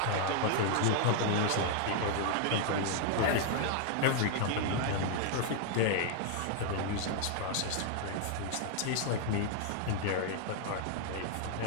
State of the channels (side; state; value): both; different; correlation 0.00